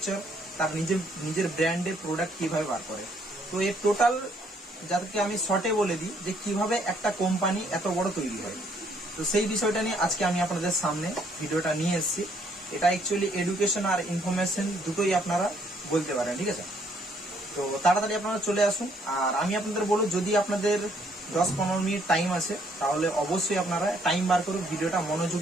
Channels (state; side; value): normal; both; correlation 0.67